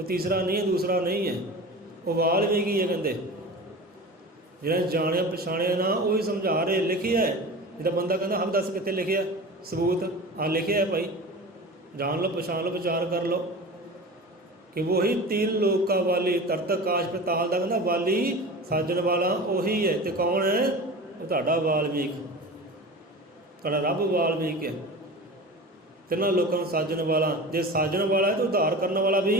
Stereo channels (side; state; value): both; normal; correlation 0.33